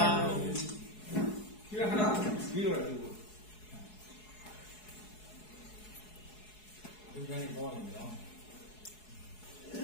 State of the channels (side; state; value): right; late; 4.7 ms